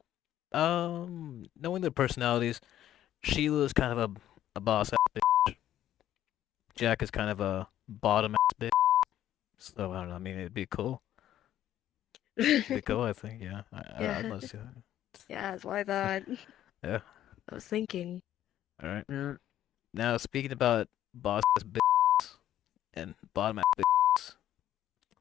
knowing their personalities, Sheila's kind of a boss ass bitch. Jack is kind of a bottom ass bitch. So, I don't know. I mean, it'd be cool. It'd be cool, I think. Yeah. I'd Yeah, love to see that. yeah, that's what I thought. Yeah. I was thinking. All right. Yeah. Now, speaking about boss ass bitches and bottom ass bitches,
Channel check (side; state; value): right; quieter; 12.0 dB